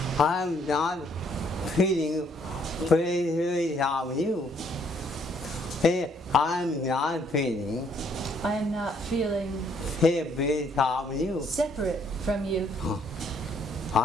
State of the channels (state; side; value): normal; both; correlation 0.67